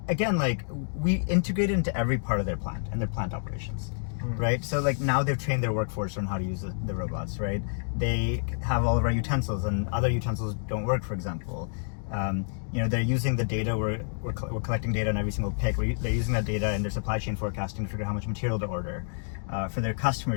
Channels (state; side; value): silent; right; digital silence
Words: again, like we integrated into every part of their plant and their plant operations, right? So like now they've trained their workforce on how to use the robots, right? They have all of our utensils and other utensils don't work, for example. You know, they're using the data, we're collecting data on every single pick. They're using that data in their supply chain forecasting to figure out how much material to order. For their